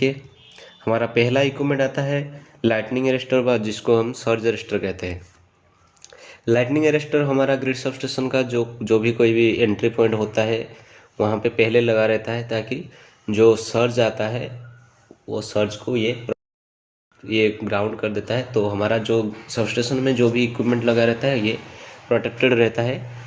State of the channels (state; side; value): identical; both; correlation 1.00